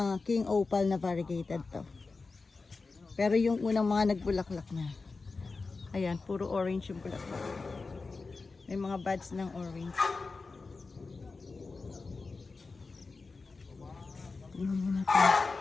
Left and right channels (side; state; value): right; quieter; 4.1 dB